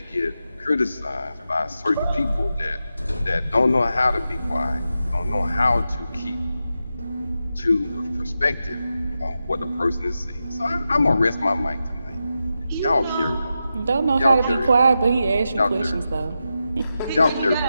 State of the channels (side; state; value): both; inverted; correlation -0.89